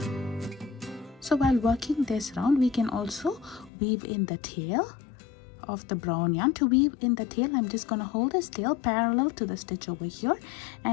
So while working this round, we can also weave in the tail of the brown yarn. To weave in the tail, I'm just going to hold this tail parallel to the stitch over here,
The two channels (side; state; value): right; drops out; at 3.7 s